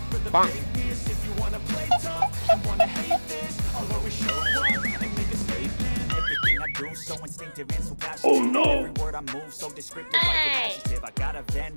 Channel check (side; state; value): both; inverted; correlation -1.00